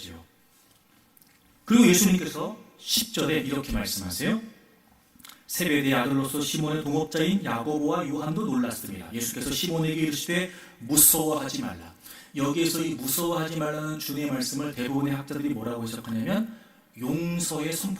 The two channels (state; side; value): identical; both; correlation 1.00